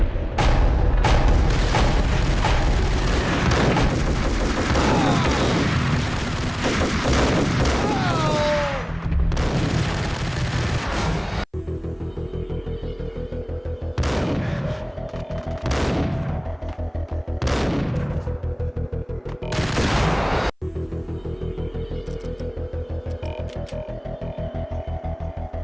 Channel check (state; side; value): identical; both; correlation 1.00